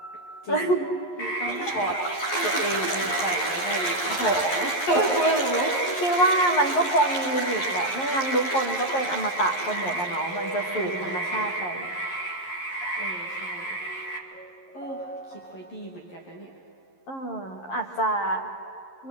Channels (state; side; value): late; right; 11 ms